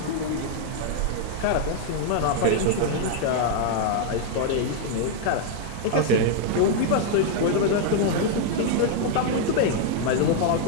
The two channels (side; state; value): both; different; correlation 0.00